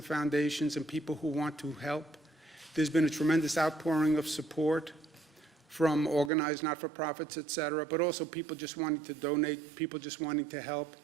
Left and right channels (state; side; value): drops out; left; at 6.3 s